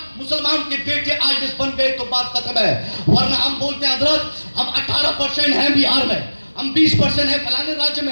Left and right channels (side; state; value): both; inverted; correlation -1.00